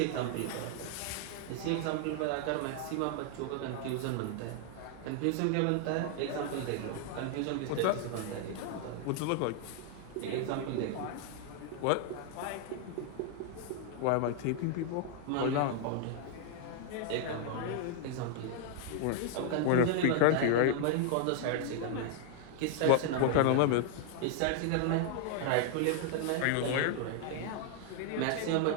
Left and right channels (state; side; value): different; both; correlation 0.00